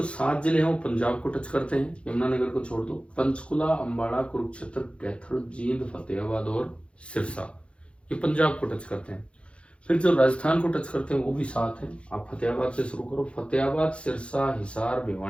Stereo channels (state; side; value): late; right; 0.059 ms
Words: 7 जिले हैं वो पंजाब को टच करते हैं, यमुनानगर को छोड़ दो। पंचकुला, अंबाला, कुरुक्षेत्र, कैथल, जींद, फतेहाबाद और सिरसा, ये पंजाब को टच करते हैं। फिर जो राजस्थान को टच करते हैं वो भी 7 हैं। आप फतेहाबाद से शुरू करो, फतेहाबाद, सिरसा, हिसार,